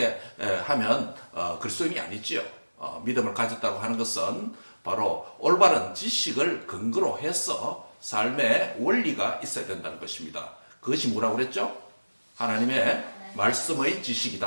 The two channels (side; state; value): both; inverted; correlation -1.00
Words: 하면 그리스도인이 아니지요. 믿음을 가졌다고 하는 것은 바로 올바른 지식을 근거로 해서 삶의 원리가 있어야 된다는 것입니다. 그것이 뭐라고 그랬죠? 하나님의 말씀의